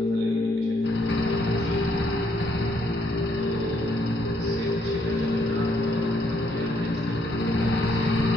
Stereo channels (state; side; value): normal; both; correlation 0.71